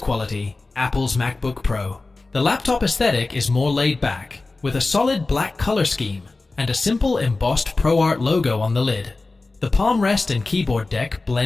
quality, Apple's MacBook Pro. The laptop aesthetic is more laid back, with a solid black color scheme and a simple embossed ProArt logo on the lid. The palm rest and keyboard deck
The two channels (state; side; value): quieter; right; 3.5 dB